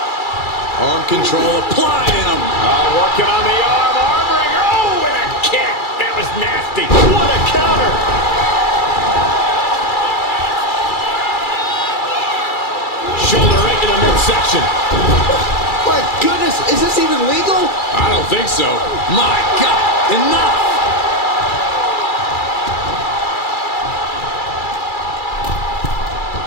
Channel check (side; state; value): right; late; 2.3 ms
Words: Arm control applied in him. Working on the arm wringer. Oh, and a kick. That was nasty. What a counter. Shoulder right to the midsection. My goodness, is this even legal? I don't think so. My God, enough.